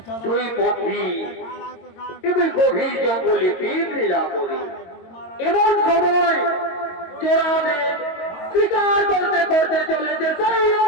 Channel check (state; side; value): late; right; 22 ms